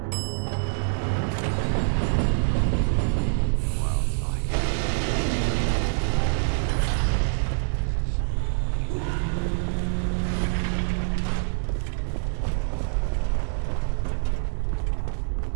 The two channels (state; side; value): silent; left; digital silence